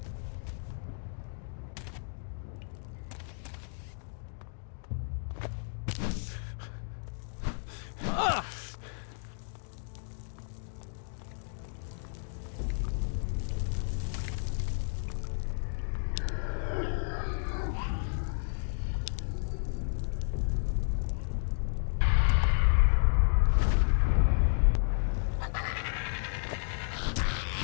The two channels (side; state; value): right; silent; digital silence